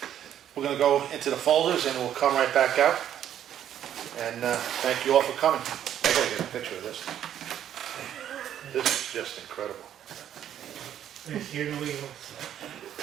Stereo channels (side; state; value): left; quieter; 10.4 dB